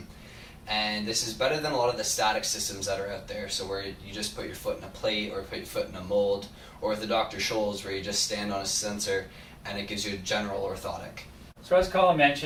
And this is better than a lot of the static systems that are out there, so where you just put your foot in a plate or put your foot in a mold, or with the Dr. Scholl's where you just stand on a sensor and it gives you a general orthotic. So as Colin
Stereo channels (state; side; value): identical; both; correlation 1.00